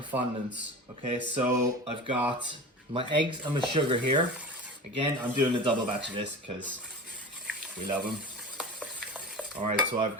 fondants. Okay, so I've got my eggs and my sugar here. Again, I'm doing a double batch of this because we love them. All right, so I've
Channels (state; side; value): normal; both; correlation 0.32